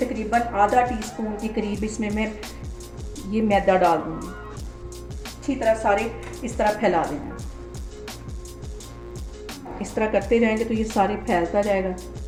आधा टीस्पून के करीब इसमें मैं ये मैदा डाल दूँगी। अच्छी तरह सारे इस तरह फैला देना है। इस तरह करते जाएंगे तो ये सारे फैलता जाएगा।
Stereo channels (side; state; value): both; identical; correlation 1.00